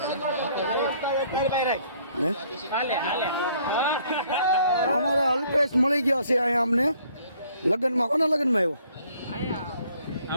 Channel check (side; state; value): both; inverted; correlation -0.62